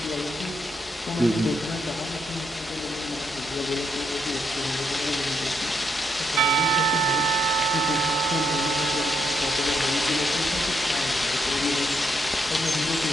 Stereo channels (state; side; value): normal; both; correlation 0.78